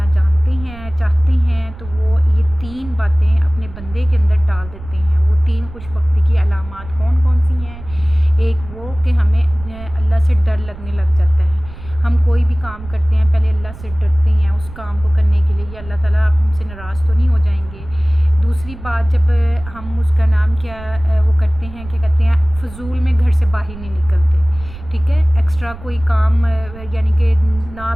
جانتے ہیں چاہتے ہیں تو وہ یہ 3 باتیں اپنے بندے کے اندر ڈال دیتے ہیں۔ وہ 3 خوش بختی کی علامات کون کون سی ہیں؟ ایک وہ کہ ہمیں اللہ سے ڈر لگنے لگ جاتا ہے۔ ہم کوئی بھی کام کرتے ہیں پہلے اللہ سے ڈرتے ہیں اس کام کو کرنے کے لیے، یا اللہ تعالیٰ آپ ہم سے ناراض تو نہیں ہو جائیں گے۔ دوسری بات، جب ہم اس کا نام کیا وہ کرتے ہیں، کیا کہتے ہیں، فضول میں گھر سے باہر نہیں نکلتے، ٹھیک ہے، ایکسٹرا کوئی کام یعنی کہ نہ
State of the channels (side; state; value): right; noise; rumble, 15 dB below the sound